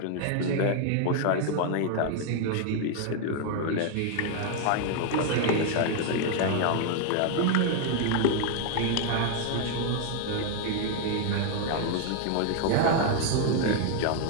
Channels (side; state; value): both; different; correlation 0.00